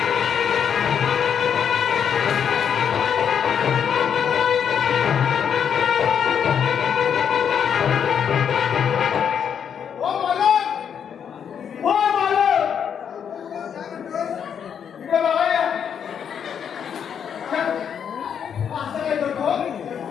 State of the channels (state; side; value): quieter; right; 7.9 dB